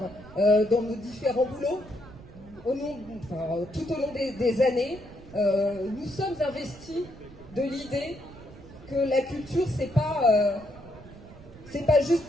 dans nos différents boulots tout au long des années. Nous sommes investis de l'idée que la culture, c'est pas juste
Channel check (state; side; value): noise; right; rumble, 19 dB below the sound